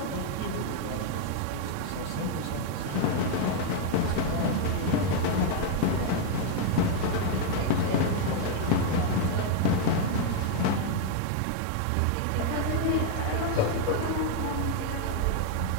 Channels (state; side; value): different; both; correlation 0.00